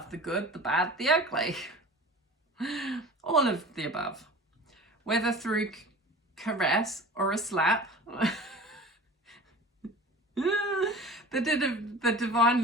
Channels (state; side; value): normal; both; correlation 0.38